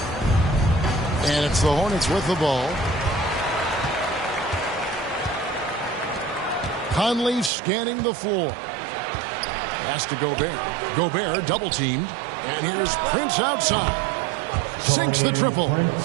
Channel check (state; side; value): drops out; left; at 7.5 s